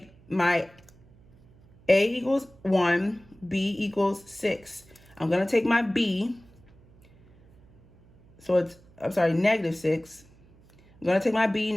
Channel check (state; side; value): noise; right; hum, 27 dB below the sound